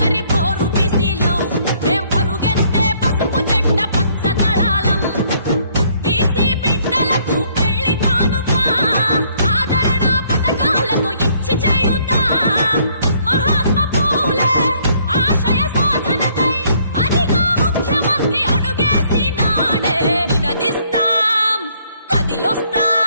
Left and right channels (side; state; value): both; inverted; correlation -0.65